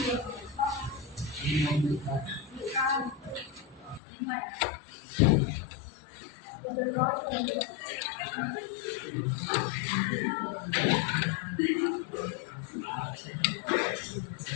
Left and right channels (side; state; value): right; drops out; at 4.0 s